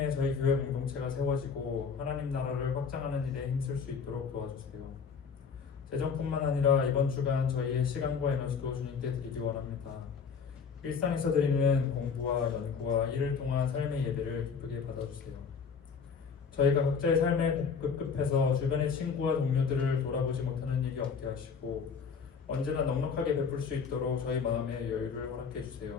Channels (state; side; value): quieter; right; 5.9 dB